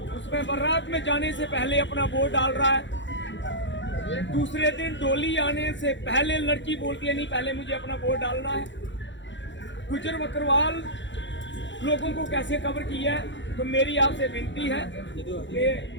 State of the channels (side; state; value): right; late; 0.54 ms